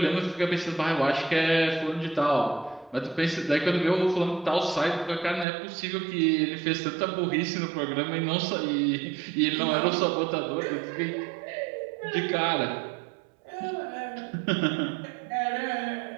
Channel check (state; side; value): drops out; left; at 5.5 s